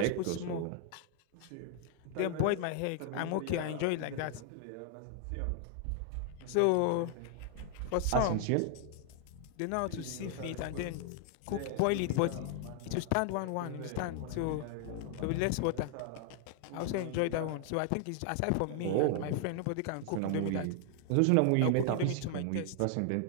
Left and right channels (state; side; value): different; both; correlation 0.00